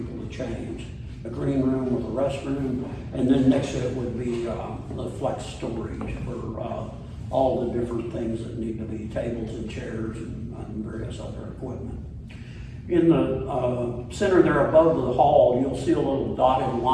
to change. A green room with a restroom, and then next to it would be the flex storage for all the different things that need to be tables and chairs and various other equipment. In the center there above the hall, you'll see a little dotted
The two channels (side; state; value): both; identical; correlation 1.00